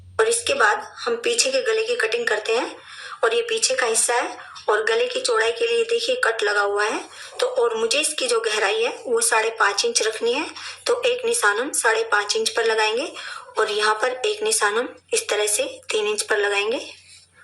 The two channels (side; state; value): both; identical; correlation 1.00